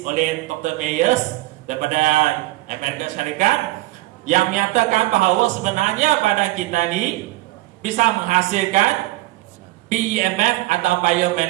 oleh Dr. Myers daripada Amerika Syarikat yang menyatakan bahawa sebenarnya badan kita ni bisa menghasilkan BEMF atau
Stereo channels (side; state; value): left; quieter; 18.6 dB